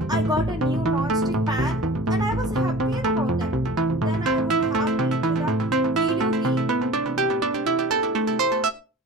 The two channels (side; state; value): both; normal; correlation 0.41